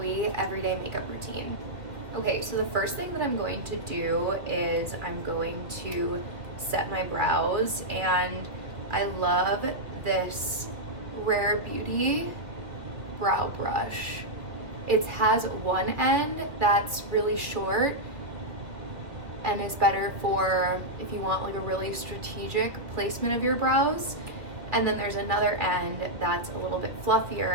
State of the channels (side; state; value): left; late; 2.2 ms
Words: everyday makeup routine. Okay, so the first thing that I'm going to do is I'm going to set my brows, and I love this Rare Beauty brow brush. It has one end that's really short and is better for if you want like a really strategic placement of your brows. And then there's another end that's a little bit